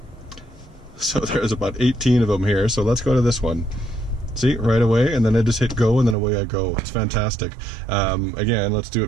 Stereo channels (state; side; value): drops out; left; at 6.2 s